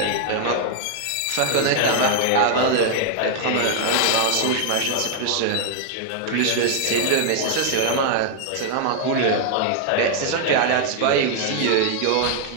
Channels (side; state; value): both; different; correlation 0.00